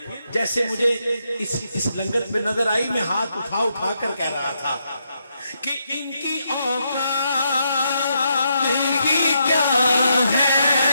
جیسے مجھے اس لنگر میں نظر آئی، میں ہاتھ اٹھا کر کہہ رہا تھا کہ ان کی اوقات کی کیا ہے،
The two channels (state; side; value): inverted; both; correlation -0.80